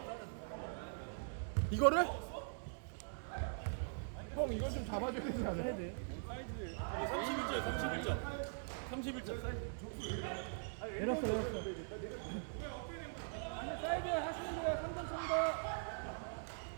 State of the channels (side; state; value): left; silent; digital silence